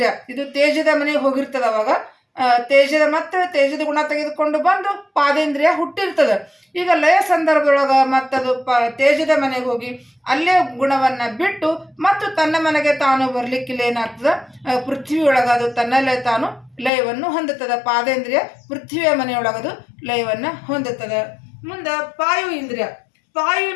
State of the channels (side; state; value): right; drops out; at 16.9 s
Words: ಇದು ತೇಜದ ಮನೆಗೆ ಹೋಗಿರ್ತದೆ. ಅವಾಗ ತೇಜದ ಮತ್ತು ತೇಜದ ಗುಣ ತೆಗೆದುಕೊಂಡು ಬಂದು ಪಾದೇಂದ್ರಿಯ ಹುಟ್ಟಿರ್ತದೆ. ಈಗ ಲಯ ಸಂದರ್ಭದೊಳಗೆ ಮತ್ತದು ತೇಜದ ಮನೆಗೆ ಹೋಗಿ ಅಲ್ಲೇ ಗುಣವನ್ನು ಬಿಟ್ಟು ಮತ್ತು ತನ್ನ ಮನೆಗೆ ತಾನು ಬರ್ಲಿಕ್ಕಿಲ್ಲ ಏನಾಗ್ತದೆ, ಪೃಥ್ವಿಯೊಳಗೆ ಅದು ತನ್ನಲ್ಲೇ ತಾನು ಲಯವನ್ನು ಹೊಂದುತ್ತದೆ. ಪಾದೇಂದ್ರಿಯ ಪೃಥ್ವಿಯ ಮನೆಯೊಳಗದು ಲಯವನ್ನು ಹೊಂದುತ್ತದೆ. ಮುಂದೆ ಪಾಯು ಇಂದ್ರಿಯ,